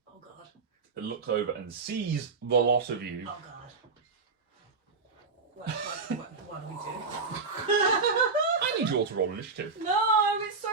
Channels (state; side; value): quieter; left; 4.4 dB